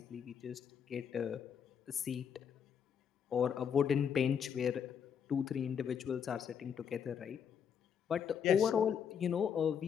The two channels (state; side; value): quieter; right; 7.7 dB